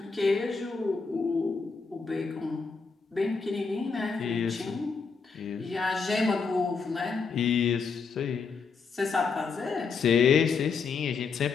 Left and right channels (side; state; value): right; quieter; 5.1 dB